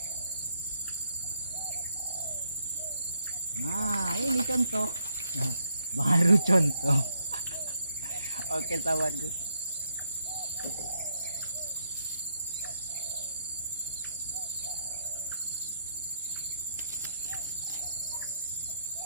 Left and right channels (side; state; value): both; inverted; correlation -0.74